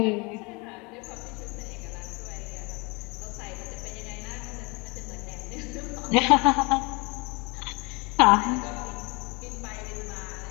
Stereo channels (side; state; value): right; quieter; 28.4 dB